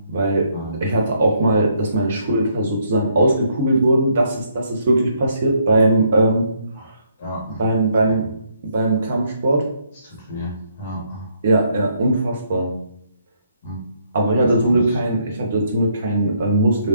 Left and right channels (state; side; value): inverted; both; correlation -0.71